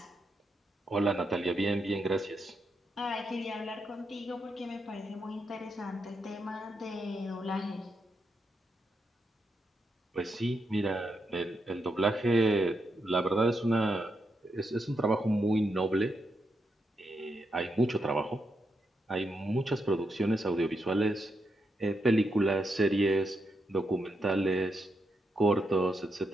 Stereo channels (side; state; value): both; normal; correlation 0.82